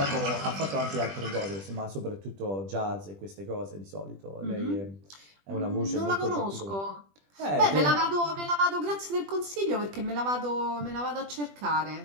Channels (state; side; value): late; left; 20 ms